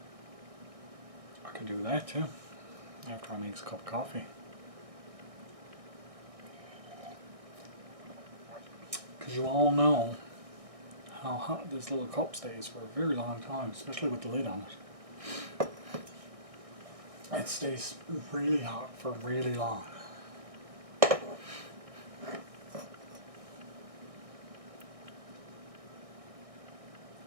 I could do that too, after I make a cup of coffee. Because you all know how hot this little cup stays for a very long time, especially with the lid on it. It stays really hot for really long.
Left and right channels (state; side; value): late; left; 1.6 ms